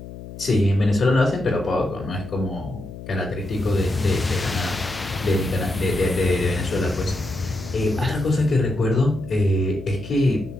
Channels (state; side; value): noise; left; hum, 13 dB below the sound